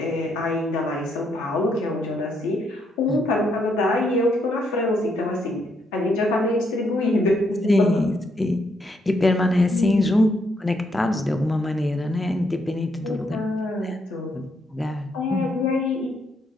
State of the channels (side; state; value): both; normal; correlation 0.75